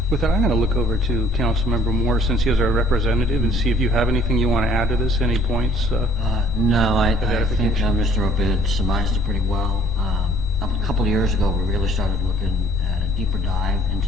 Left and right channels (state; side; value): normal; both; correlation 0.57